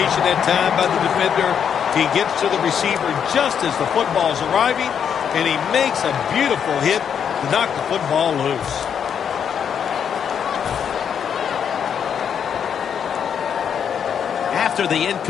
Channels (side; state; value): right; quieter; 7.9 dB